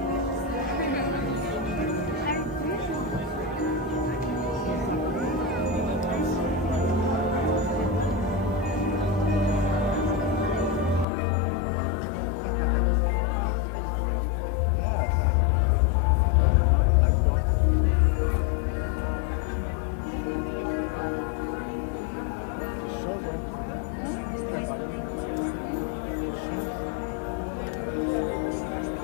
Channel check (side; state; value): right; drops out; at 11.1 s